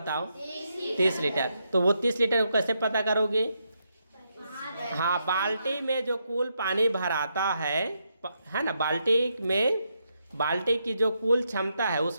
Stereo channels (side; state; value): both; inverted; correlation -0.80